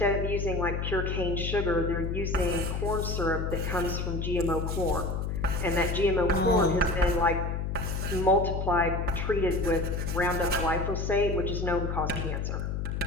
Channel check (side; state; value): left; noise; hum, 2 dB below the sound